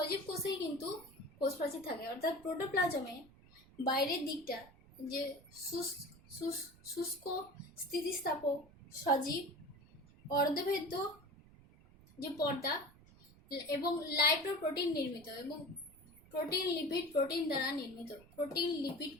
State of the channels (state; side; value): noise; right; rumble, 24 dB below the sound